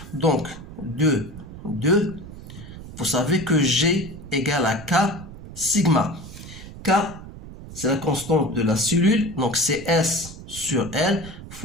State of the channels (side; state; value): right; noise; rumble, 14 dB below the sound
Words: Donc, 2, vous savez que G égale à K sigma. K, c'est la constante de la cellule, donc c'est S sur L